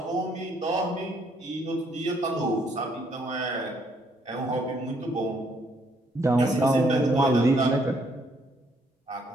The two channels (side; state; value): both; normal; correlation 0.69